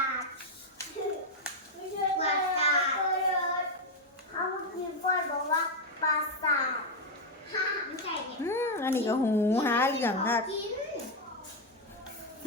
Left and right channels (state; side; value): normal; both; correlation 0.03